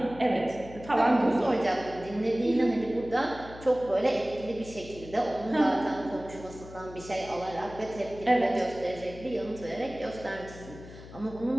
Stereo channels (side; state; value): left; noise; hum, 16 dB below the sound